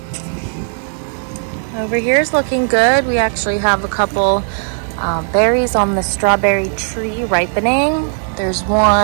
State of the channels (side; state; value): left; silent; digital silence